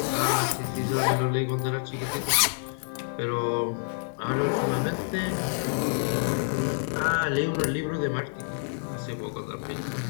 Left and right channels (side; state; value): right; silent; digital silence